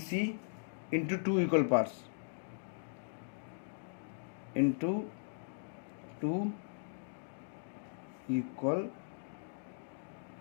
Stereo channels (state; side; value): silent; right; digital silence